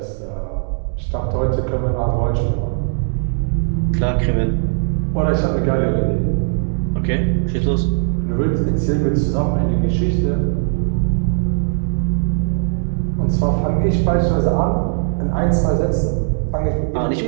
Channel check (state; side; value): silent; left; digital silence